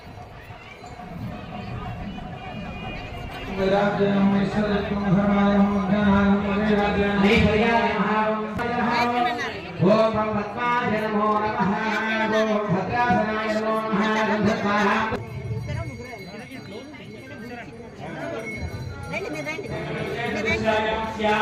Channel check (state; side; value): identical; both; correlation 1.00